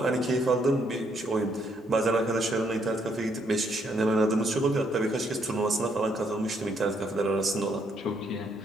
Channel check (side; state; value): both; normal; correlation 0.72